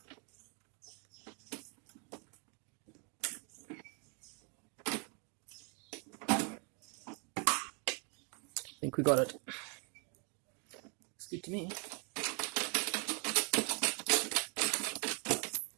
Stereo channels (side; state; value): left; quieter; 36.2 dB